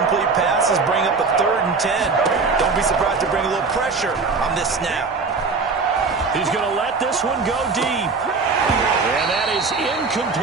passes, bring up a 3rd and 10. Don't be surprised to bring a little pressure on this snap. He's going to let this one go deep. And that is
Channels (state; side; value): quieter; left; 4.5 dB